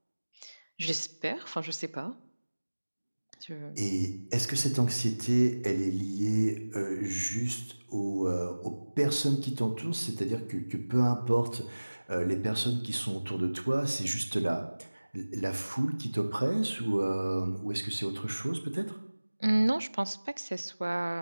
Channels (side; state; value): both; inverted; correlation -1.00